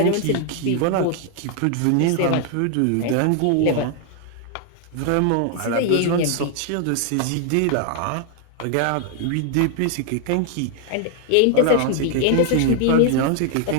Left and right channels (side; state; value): both; different; correlation 0.00